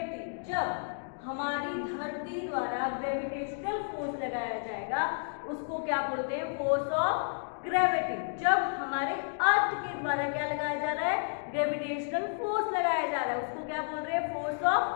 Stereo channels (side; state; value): right; silent; digital silence